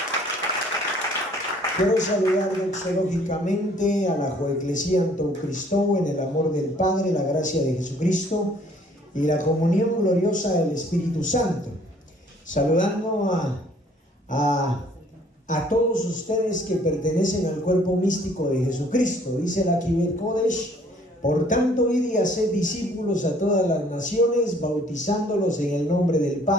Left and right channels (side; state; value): both; normal; correlation 0.59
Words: Quiero saludar doxológicamente a la Joeclesía Antou Cristo en el amor del Padre, la gracia de Jesucristo y la comunión gloriosa del Espíritu Santo. Saludando a todos ustedes que pertenecen al cuerpo místico de Jesucristo. Dice la Kibet Kodesh: por tanto, id y haced discípulos a todas las naciones, bautizándolos en el nombre del